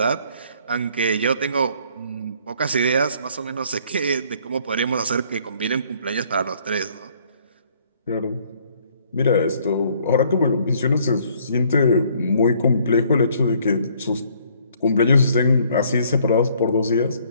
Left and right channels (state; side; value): inverted; both; correlation -0.62